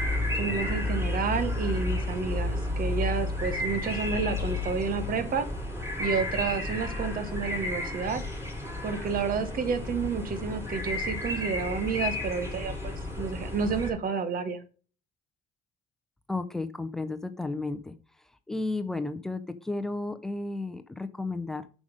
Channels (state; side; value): normal; both; correlation 0.40